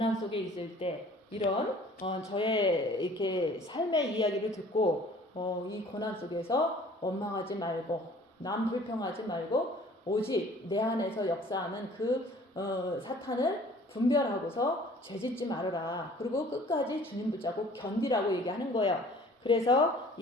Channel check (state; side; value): normal; both; correlation 0.51